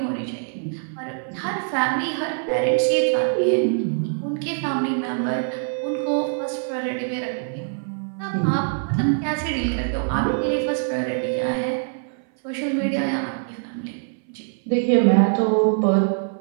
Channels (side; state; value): left; silent; 58 dB below the other